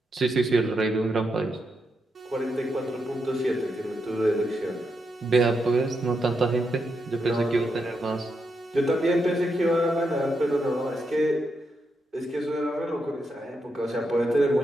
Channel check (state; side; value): normal; both; correlation 0.83